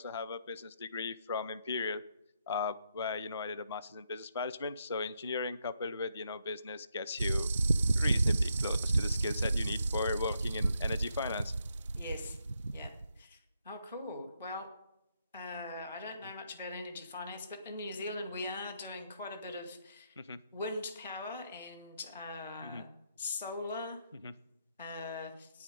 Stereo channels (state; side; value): inverted; both; correlation -0.78